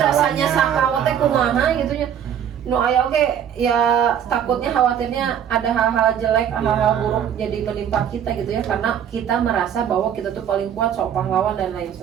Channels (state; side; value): quieter; left; 9.1 dB